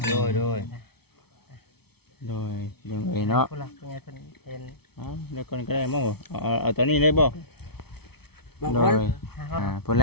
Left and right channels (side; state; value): right; late; 0.96 ms